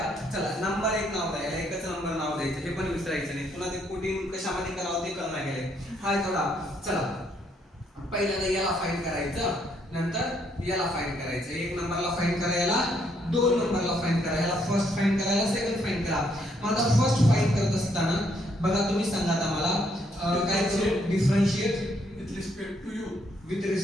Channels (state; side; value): normal; both; correlation 0.71